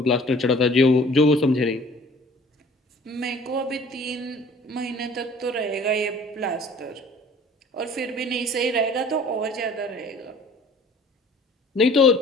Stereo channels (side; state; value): both; normal; correlation 0.51